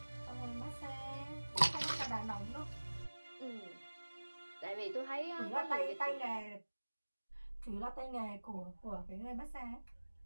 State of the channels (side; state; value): both; inverted; correlation -1.00